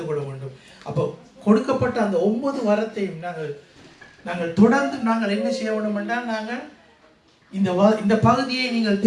கொள்ள வேண்டும். அப்போ கொடுக்கப்பட்ட அந்த 9 வரத்தையும் நாங்கள் தொடர்ந்து நாங்கள் என்ன செய்ய வேண்டும் என்றால் நாங்கள் இந்த பகுதியை நீங்கள்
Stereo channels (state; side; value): identical; both; correlation 1.00